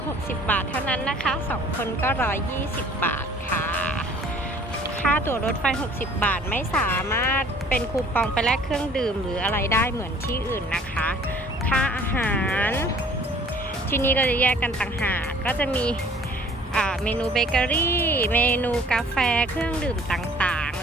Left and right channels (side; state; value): both; normal; correlation 0.53